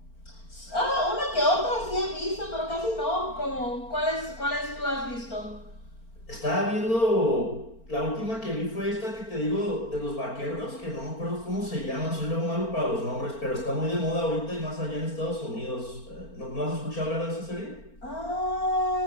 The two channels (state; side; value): late; right; 4.4 ms